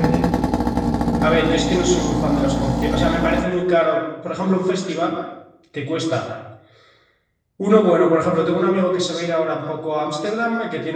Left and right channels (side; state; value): both; identical; correlation 1.00